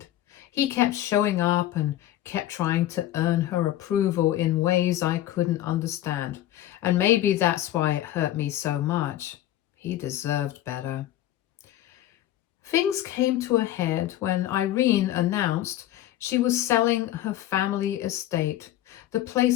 He kept showing up and kept trying to earn her approval in ways I couldn't understand. And maybe that's why it hurt me so much. He deserved better. Things came to a head when Irene announced she was selling her family estate. The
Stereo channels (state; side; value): quieter; right; 13.4 dB